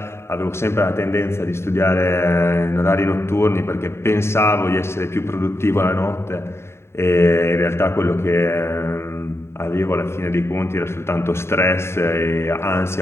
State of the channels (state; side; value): late; right; 0.12 ms